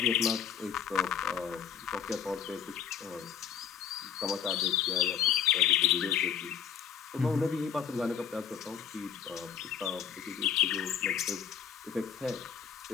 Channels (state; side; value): quieter; right; 8.2 dB